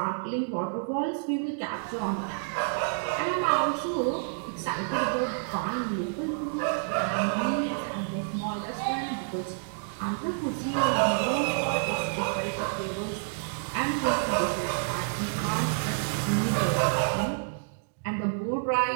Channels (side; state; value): left; silent; digital silence